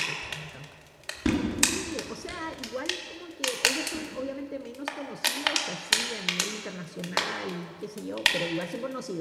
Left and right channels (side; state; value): both; identical; correlation 1.00